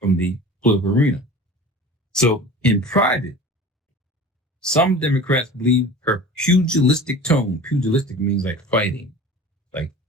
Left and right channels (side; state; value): both; normal; correlation 0.39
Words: the political arena. So in private, some Democrats believe her pugilistic tone. Pugilistic means like fighting, like